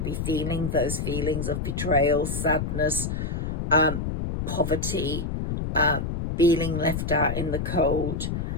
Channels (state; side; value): noise; left; rumble, 3 dB below the sound